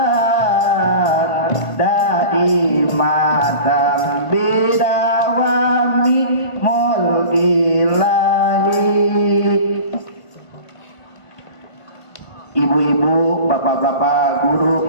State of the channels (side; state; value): right; late; 1.5 ms